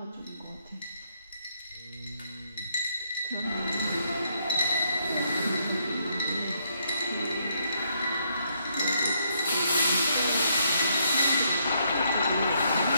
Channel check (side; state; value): both; inverted; correlation -0.73